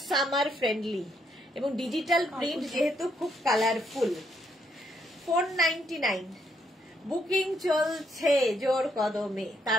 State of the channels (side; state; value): both; normal; correlation 0.74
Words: সামার ফ্রেন্ডলি এবং ডিজিটাল প্রিন্ট, যেহেতু খুব কালারফুল। 499, বুকিং চলছে জোর কদমে,